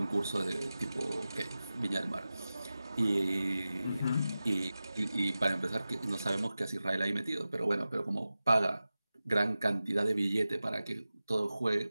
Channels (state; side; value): inverted; both; correlation -0.95